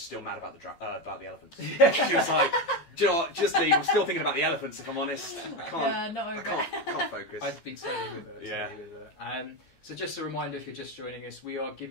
still mad about the elephants. She was like, "Do you know what? Just leave. I'm still thinking about the elephants, if I'm honest. I can't focus." I'd be totally with her. So just a reminder, if you're just joining us, we are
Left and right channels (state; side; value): late; right; 14 ms